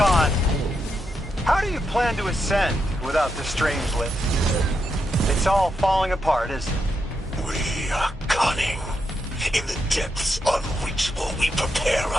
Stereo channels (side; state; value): both; normal; correlation 0.83